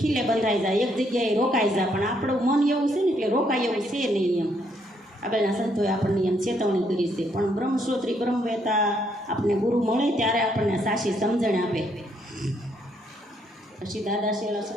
ખીલે બંધાઈ જાય, એક જગ્યાએ રોકાઈ જાય. પણ આપણું મન એવું છે ને એટલે રોકાય એવું છે નહીં એમ. આગળના સંતોએ આપણને એમ ચેતવણી કરી છે. પણ બ્રહ્મશ્રોત્રી બ્રહ્મવેતા આપણને ગુરુ મળે ત્યારે આપણને સાચી સમજણ આપે. પછી દાદા શેલા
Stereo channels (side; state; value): both; normal; correlation 0.72